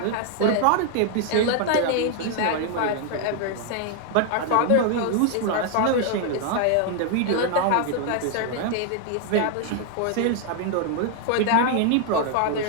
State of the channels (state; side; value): different; both; correlation 0.00